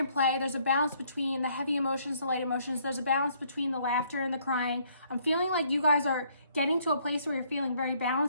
play. There's a balance between the heavy emotions, the light emotions. There's a balance between the laughter and the crying. I'm feeling like you guys are getting to a place where you're feeling very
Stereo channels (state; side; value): inverted; both; correlation -0.66